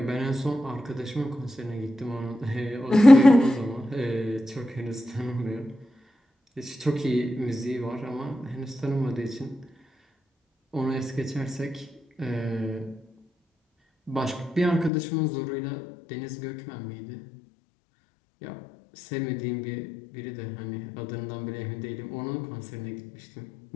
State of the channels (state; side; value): drops out; right; at 14.9 s